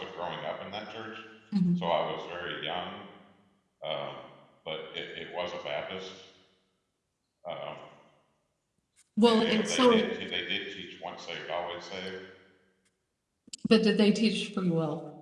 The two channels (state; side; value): identical; both; correlation 1.00